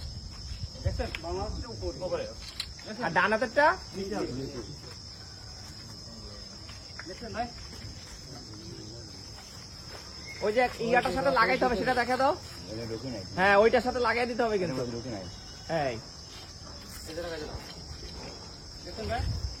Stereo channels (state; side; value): identical; both; correlation 1.00